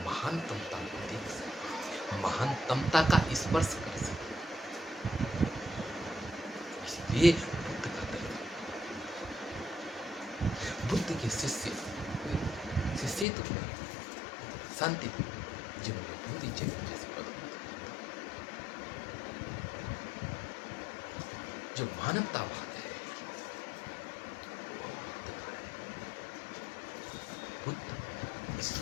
महानतमता को देख सकें, महानतमता का स्पर्श कर सकें। इसलिए बुद्ध का दर्शन, बुद्ध के शिष्य तो शांति जिन्होंने पूरी जगह जैसे पद, जो मानवतावाद है वो बुद्ध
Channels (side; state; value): right; drops out; at 13.2 s